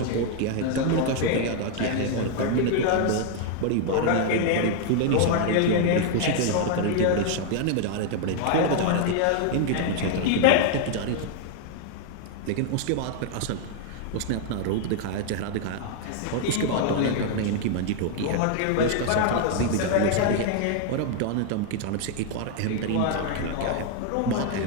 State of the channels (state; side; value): different; both; correlation 0.00